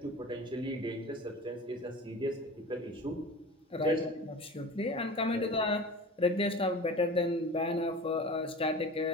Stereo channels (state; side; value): normal; both; correlation 0.36